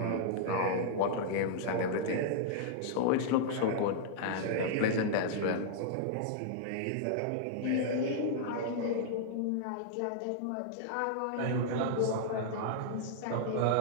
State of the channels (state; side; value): different; both; correlation -0.01